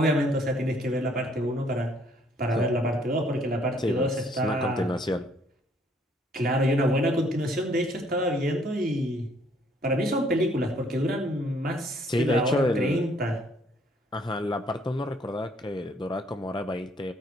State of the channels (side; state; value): both; normal; correlation 0.64